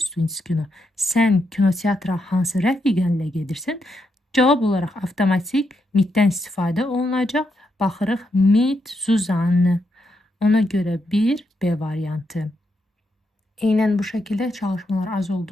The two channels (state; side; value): normal; both; correlation 0.81